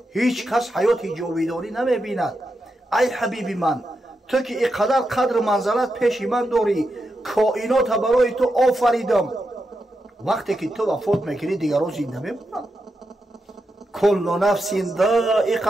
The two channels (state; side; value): normal; both; correlation 0.86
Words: هیچ کس حیات جاودانی نمیبیند. ای حبیب من، تو که اینقدر قدر منزلت پیش من داری، کائنات برای تو آفریدم، وقتی که تو وفات میکنی دیگران زنده میمونند. کل نفس